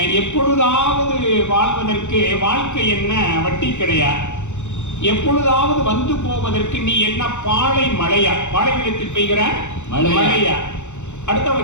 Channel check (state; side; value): late; right; 0.84 ms